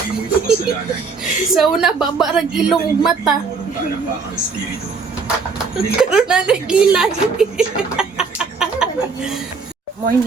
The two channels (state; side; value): quieter; left; 4.8 dB